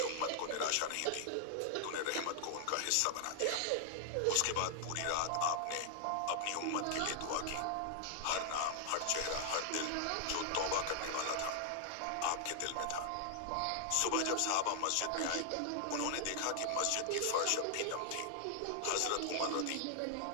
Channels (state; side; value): different; both; correlation 0.00